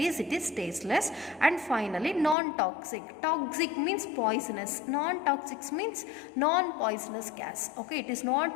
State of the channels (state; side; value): drops out; right; at 2.4 s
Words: it is tasteless. And finally, non-toxic. Toxic means poisonous, non-toxic means non-poisonous gas. Okay, it is